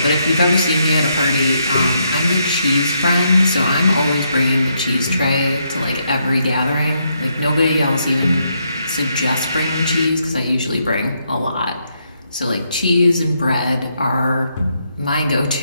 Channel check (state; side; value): inverted; both; correlation -0.77